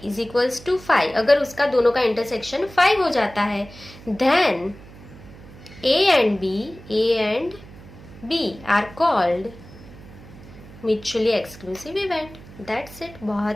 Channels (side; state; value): right; noise; hum, 19 dB below the sound